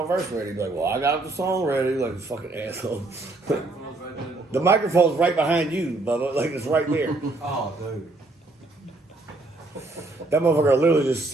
verse ready. He's like, well, I got the song ready. Like, this fucking asshole. The microphone's right behind you, Bubba. Like, it's right there. Oh, dude. That motherfucker literally just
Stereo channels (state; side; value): quieter; left; 3.0 dB